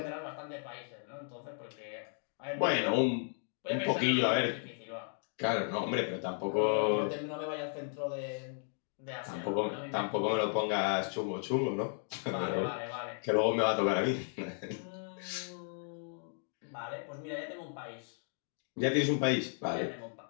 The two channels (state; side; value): silent; right; 55 dB below the other